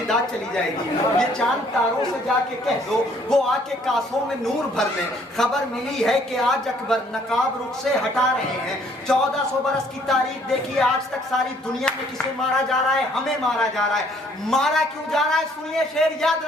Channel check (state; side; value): normal; both; correlation 0.62